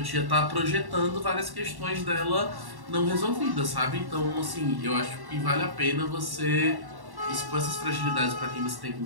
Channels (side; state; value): left; late; 1.1 ms